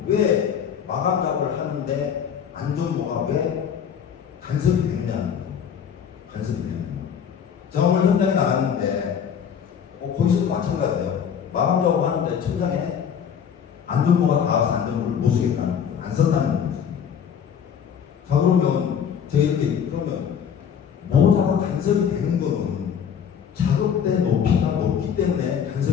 왜 마감 작업을 하는데 안전모가 왜 간섭이 되느냐는 거죠. 간섭이 되느냐. 제가 오늘 현장에 나갔는데 거기서도 마찬가지예요. 마감 작업하는데 천장에 안전모가 닿아서 안전모를 못 쓰겠다는 거죠. 안 썼다는 거죠. 자, 그러면 제가 이렇게 그러면 모자가 간섭이 되는 거는 작업대 높이가 높기 때문에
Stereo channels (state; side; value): quieter; right; 7.9 dB